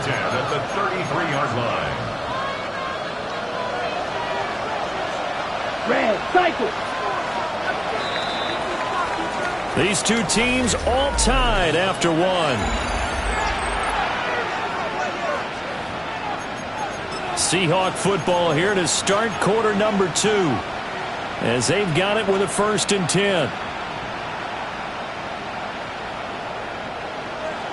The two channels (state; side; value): identical; both; correlation 1.00